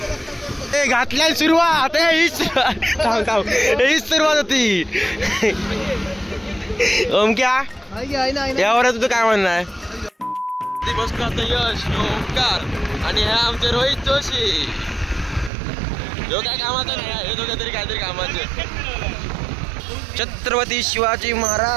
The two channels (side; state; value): left; drops out; at 15.5 s